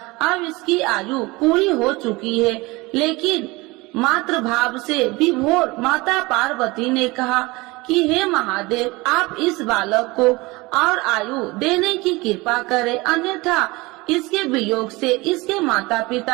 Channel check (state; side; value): quieter; left; 22.9 dB